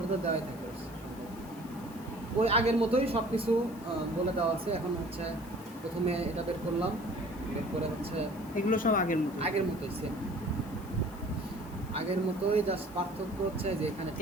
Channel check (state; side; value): noise; left; hiss, 22 dB below the sound